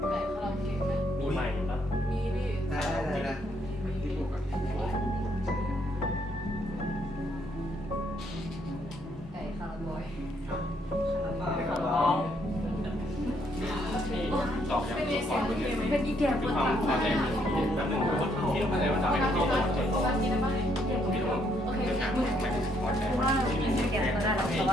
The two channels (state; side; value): normal; both; correlation 0.71